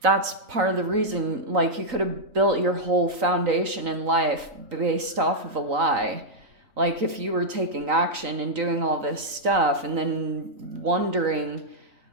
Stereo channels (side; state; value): left; late; 3.9 ms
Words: that's part of the reason. Like, you could have built your whole foundation in life based off of a lie. Like, if you were taking action and doing all this stuff and then wondering